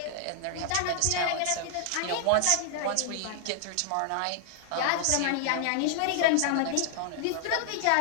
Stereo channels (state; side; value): different; both; correlation 0.00